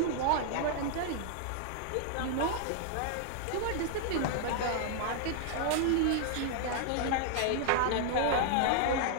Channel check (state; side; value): different; both; correlation 0.00